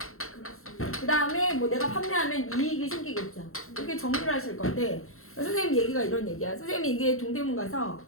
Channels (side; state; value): right; late; 0.62 ms